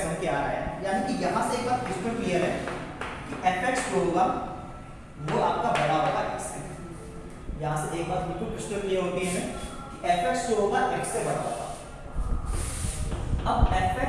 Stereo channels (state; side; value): identical; both; correlation 1.00